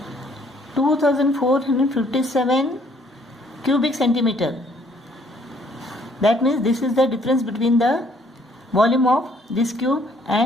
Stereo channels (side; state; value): both; normal; correlation 0.64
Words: cubic centimeter. That means this is the difference between the volume of this cube